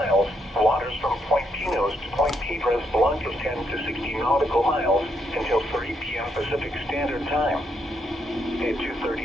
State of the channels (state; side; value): normal; both; correlation 0.77